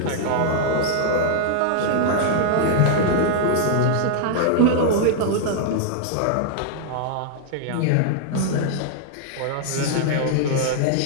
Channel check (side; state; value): both; different; correlation -0.01